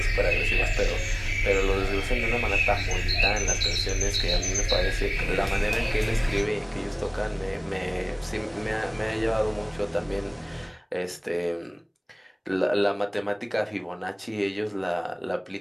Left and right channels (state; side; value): identical; both; correlation 1.00